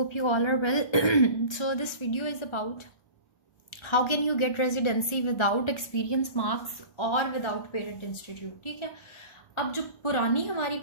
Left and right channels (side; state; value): right; late; 1.4 ms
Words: you all are well. So this video is about how can you get residency without experience marks or without parent institute. ठीक है, अब जो पुरानी हमारी